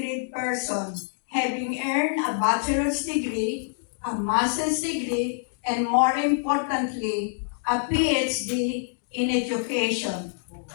person, having earned a bachelor's degree, a master's degree, and more importantly, a PhD in education,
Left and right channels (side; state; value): right; silent; digital silence